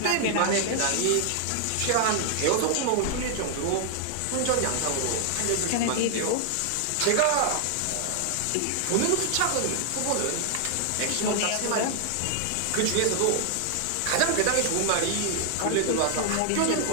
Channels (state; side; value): different; both; correlation 0.00